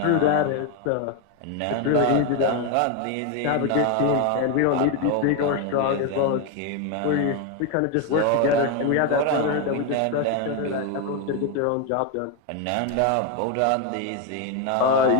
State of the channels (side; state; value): both; different; correlation 0.02